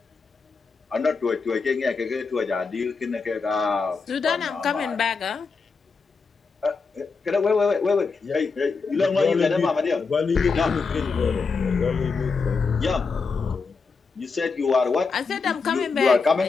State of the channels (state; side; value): quieter; right; 4.7 dB